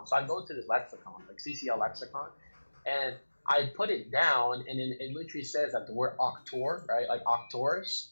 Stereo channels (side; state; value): both; inverted; correlation -1.00